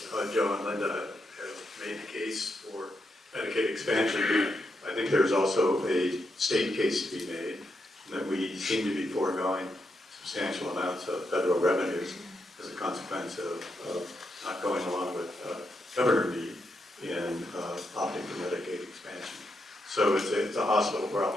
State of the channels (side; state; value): both; normal; correlation 0.82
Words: Joe and Linda have made the case for Medicaid expansion. I think there's also a state case to be made that we seem to be foregoing substantial amounts of federal revenues as a consequence of not going along with Governor Meade in opting for Medicaid expansion. So it's a hospital